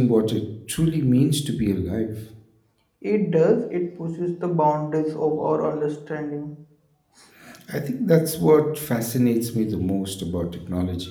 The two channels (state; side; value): identical; both; correlation 1.00